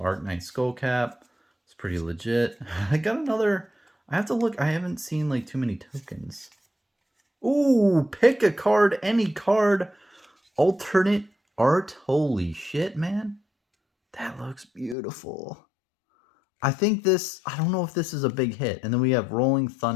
Skullcap. It's pretty legit. I got another. I have to look. I haven't seen like too many tokens. Ooh, pick a card, any card. Alternate art. Holy shit, man. That looks beautiful. I think this, I don't know if this is a big hit. And then we have Rolling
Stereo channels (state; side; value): drops out; right; at 15.0 s